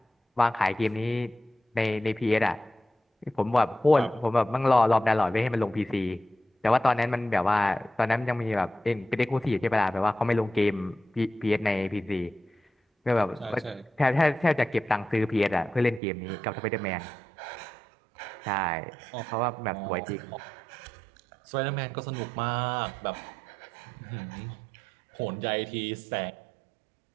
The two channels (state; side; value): drops out; left; at 16.0 s